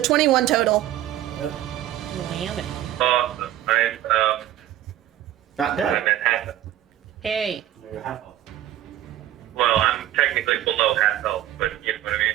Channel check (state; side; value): quieter; left; 13.1 dB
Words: 21 total. Lamb it. I'm Not dead. I'm at half. Hey. You're half health. Well, I'm technically below half health, but you know what I